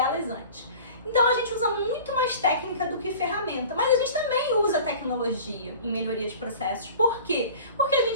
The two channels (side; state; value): both; inverted; correlation -0.41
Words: antes. Então a gente usa muito mais técnica do que ferramenta, mas a gente também usa tecnologia em melhoria de processos. Por quê? Porque a